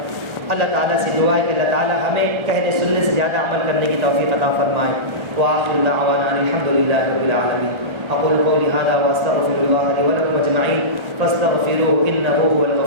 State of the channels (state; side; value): late; left; 1.4 ms